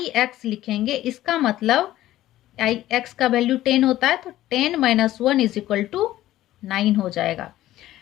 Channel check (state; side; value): quieter; right; 14.5 dB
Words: एक्स लिखेंगे इसका मतलब आई एक्स का वैल्यू 10 होता है, तो 10 - 1 = 9 हो जाएगा।